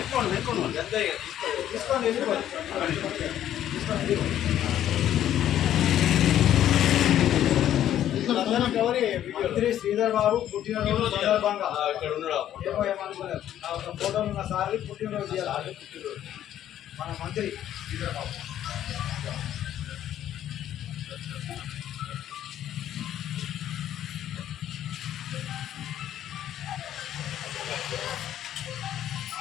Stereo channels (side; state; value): right; quieter; 11.4 dB